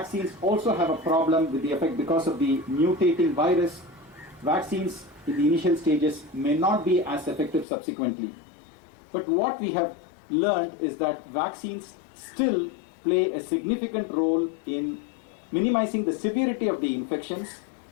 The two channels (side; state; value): right; drops out; at 7.7 s